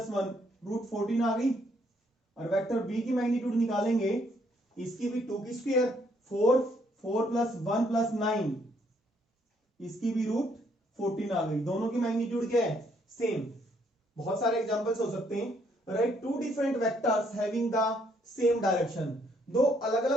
1 रूट 14 आ गई। और वेक्टर बी की मैग्नीट्यूड निकालेंगे, इसकी भी 2 की स्क्वायर 4 4 प्लस 1 प्लस 9, इसकी भी रूट 14 आ गई। दोनों की मैग्नीट्यूड क्या है, सेम। बहुत सारे एग्जांपल्स हो सकते हैं। Write two different vectors having the same direction. दो अलग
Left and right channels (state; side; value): normal; both; correlation 0.69